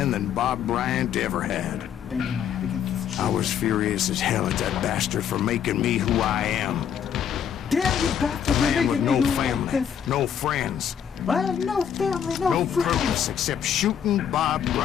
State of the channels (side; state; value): right; quieter; 8.6 dB